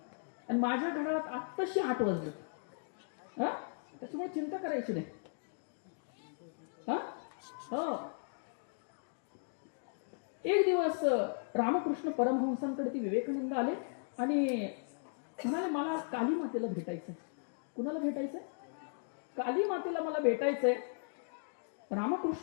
आणि माझ्या घड्याळात आत्ताशी 8 वाजले. हा, त्याच्यामुळे चिंता करायची नाही. हा, हो. एक दिवस रामकृष्ण परमहंसांकडे ती विवेकानंद आले आणि म्हणाले, मला काली मातेला भेटायचंय. कुणाला भेटायचंय? काली मातेला मला भेटायचंय.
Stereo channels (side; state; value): right; silent; digital silence